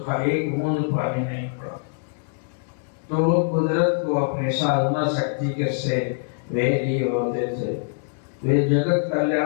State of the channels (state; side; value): silent; right; digital silence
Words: एक बूंद पानी नहीं पड़ा। तो वो कुदरत को अपनी साधना शक्ति के से वे लिए होते थे, वे जगत